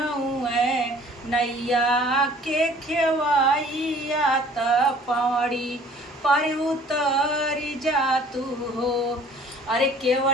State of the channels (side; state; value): both; normal; correlation 0.53